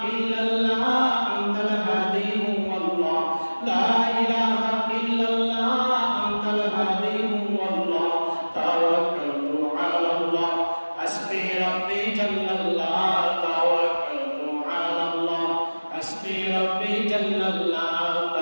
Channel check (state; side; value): inverted; both; correlation -1.00